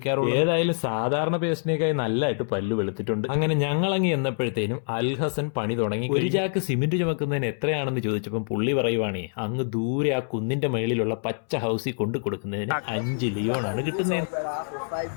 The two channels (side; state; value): right; silent; 61 dB below the other